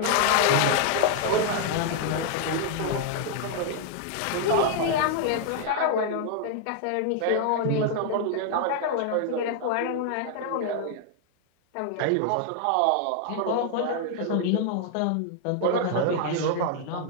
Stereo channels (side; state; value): both; different; correlation 0.00